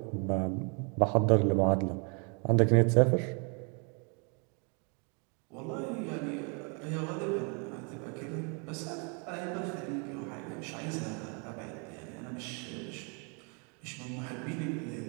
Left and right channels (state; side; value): quieter; left; 35.7 dB